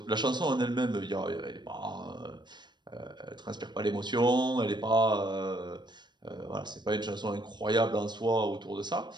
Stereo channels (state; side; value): late; left; 0.21 ms